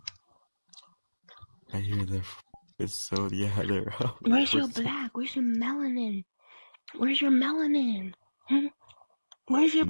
I hear it's so, yeah, they're up. Where's your black? Where's your melanin? Where's your melanin? Hmm? Where's your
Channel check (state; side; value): inverted; both; correlation -1.00